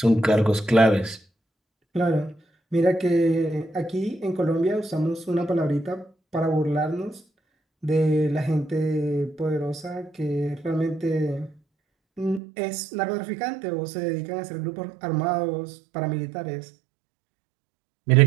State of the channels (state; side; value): drops out; left; at 12.4 s